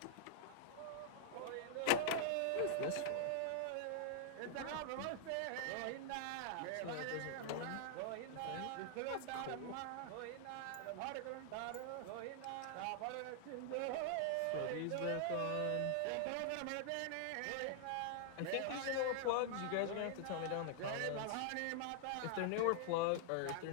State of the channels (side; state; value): both; different; correlation -0.01